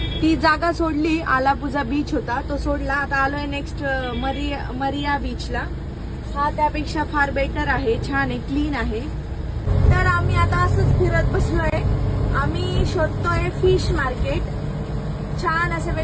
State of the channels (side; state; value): both; identical; correlation 1.00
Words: ती जागा सोडली, आलापुझा बीच होता तो सोडला. आता आलोय नेक्स्ट मरिया बीचला. हा त्यापेक्षा फार बेटर आहे, छान आहे, क्लीन आहे. तर आम्ही आता असंच फिरत बसलोय. आम्ही शोधतोय फिश मार्केट. छान असे